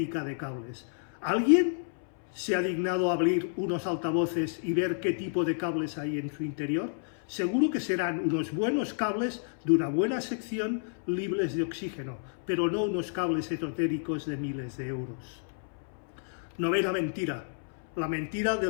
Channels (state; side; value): silent; right; 58 dB below the other